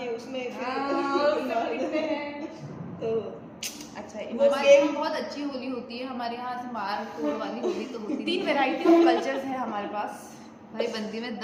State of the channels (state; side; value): identical; both; correlation 1.00